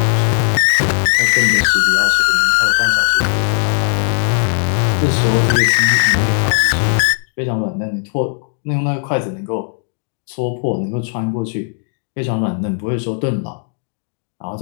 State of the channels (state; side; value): silent; right; digital silence